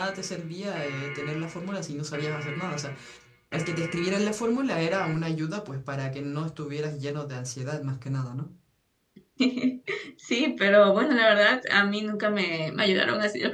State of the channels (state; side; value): identical; both; correlation 1.00